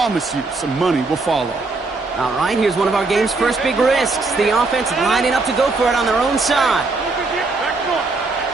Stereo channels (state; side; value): quieter; left; 3.6 dB